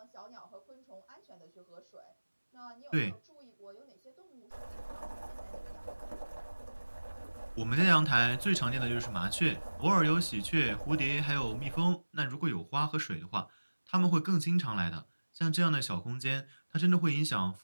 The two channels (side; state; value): both; inverted; correlation -1.00